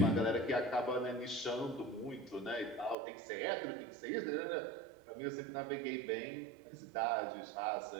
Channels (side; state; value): left; drops out; at 3.0 s